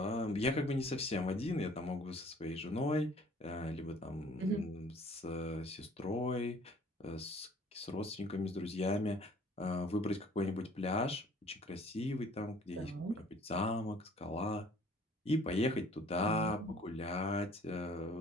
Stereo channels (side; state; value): both; normal; correlation 0.54